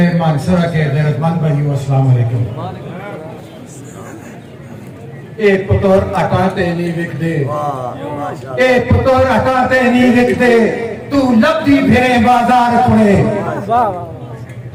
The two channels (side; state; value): both; identical; correlation 1.00